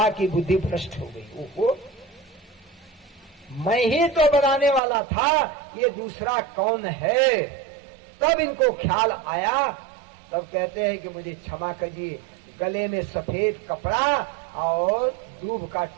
की बुद्धि भ्रष्ट हो गई। वो मैं ही तो बनाने वाला था, ये दूसरा कौन है? तब इनको ख्याल आया। तब कहते हैं कि मुझे क्षमा कीजिए। गले में सफेद कपड़ा और दूब का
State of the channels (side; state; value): left; drops out; at 4.8 s